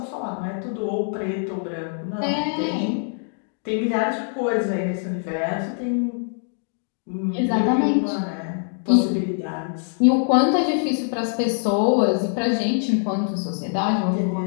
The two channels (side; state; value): right; silent; 63 dB below the other